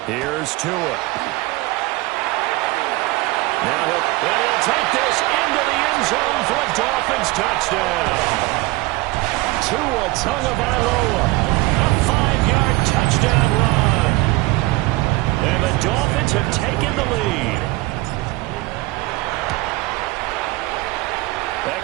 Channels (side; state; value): left; quieter; 21.5 dB